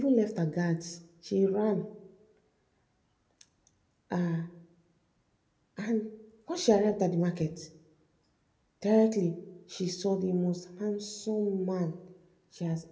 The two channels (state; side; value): identical; both; correlation 1.00